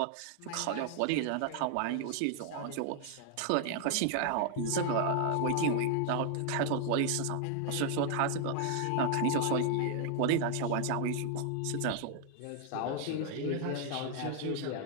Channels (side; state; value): both; different; correlation 0.00